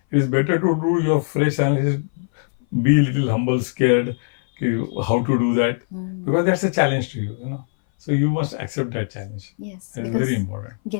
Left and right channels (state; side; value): silent; right; 59 dB below the other